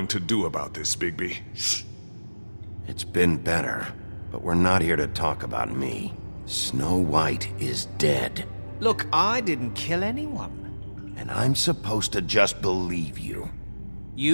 to do about this, Bigby? Shh. It's been better, but we're not here to talk about me. Snow White is dead. Look, I didn't kill anyone. And I'm supposed to just believe you.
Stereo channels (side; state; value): both; inverted; correlation -1.00